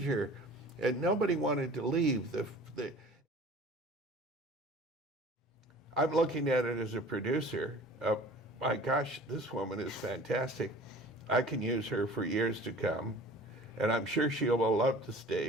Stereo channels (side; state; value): both; normal; correlation 0.45